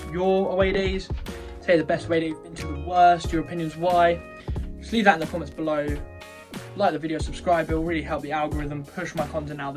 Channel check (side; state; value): both; identical; correlation 1.00